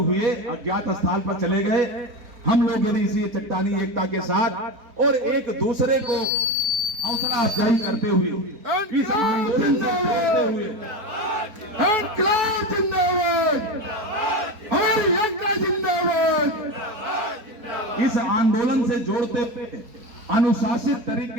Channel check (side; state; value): left; late; 4.5 ms